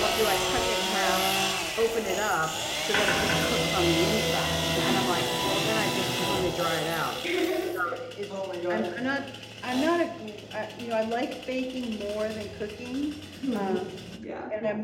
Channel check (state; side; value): identical; both; correlation 1.00